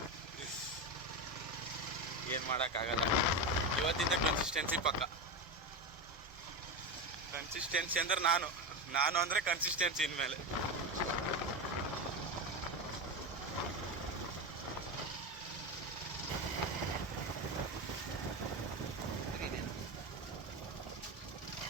ಏನು ಮಾಡೋಕ್ಕಾಗಲ್ಲ. ಇವತ್ತಿಂದ ಕನ್ಸಿಸ್ಟೆನ್ಸಿ ಪಕ್ಕ. ಕನ್ಸಿಸ್ಟೆನ್ಸಿ ಅಂದ್ರೆ ನಾನು ಅಂದರೆ ಕನ್ಸಿಸ್ಟೆನ್ಸಿ ಇನ್ಮೇಲೆ.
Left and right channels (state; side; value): normal; both; correlation 0.16